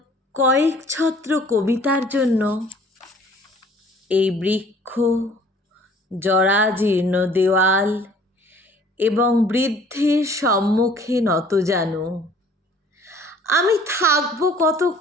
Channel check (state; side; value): normal; both; correlation 0.54